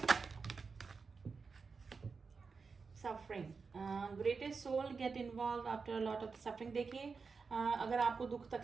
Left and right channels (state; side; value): quieter; left; 4.9 dB